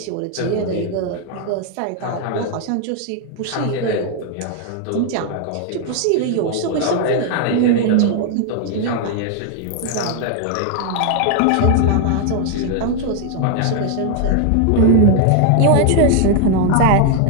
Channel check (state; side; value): different; both; correlation 0.00